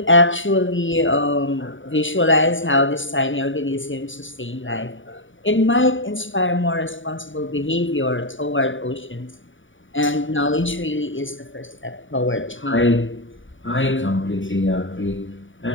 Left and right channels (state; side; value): late; right; 0.56 ms